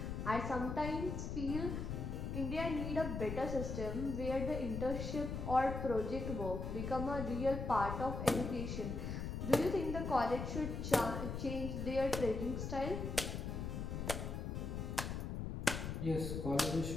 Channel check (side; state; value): left; noise; rumble, 4 dB below the sound